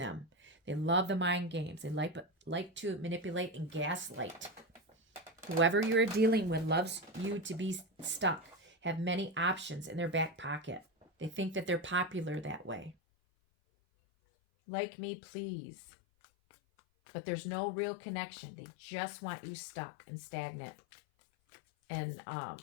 They love the mind games. They like to manipulate and gaslight. Whoever you're dealing with loves you to be stuck, have many options in their back pocket. They think that they're popular that way. Like me, please. But there's no real connection. They just want you stuck and stagnant and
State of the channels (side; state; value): right; drops out; at 13.0 s